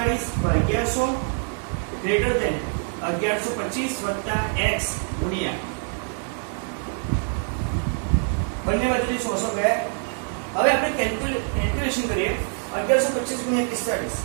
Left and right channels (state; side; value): silent; left; 58 dB below the other